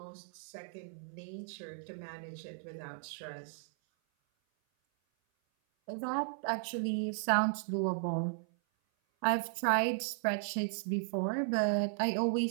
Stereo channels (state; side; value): silent; left; 54 dB below the other